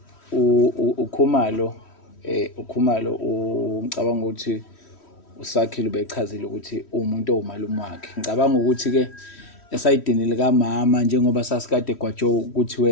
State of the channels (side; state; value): right; late; 3.1 ms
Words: ukhumalo ngicabanga ukuthi usakhile ubechazile ukuthi umuntu owumalume wakhe ngicabanga ukuthi ke esayidini lika mama njengoba sasikade gwajo ukuthi